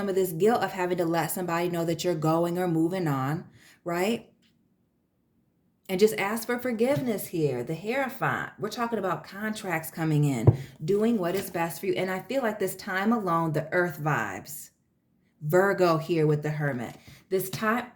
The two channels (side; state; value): both; identical; correlation 1.00